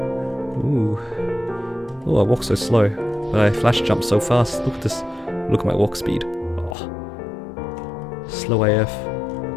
Ooh. Oh, I walk so slow, but I flash jump so fast. Look at this. Look at my walk speed. Oh. Slow AF.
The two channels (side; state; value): right; drops out; at 6.8 s